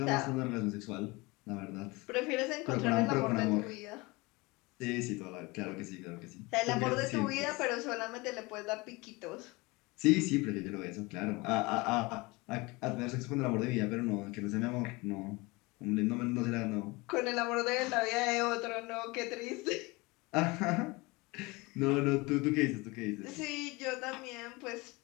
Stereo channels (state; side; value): quieter; right; 24.2 dB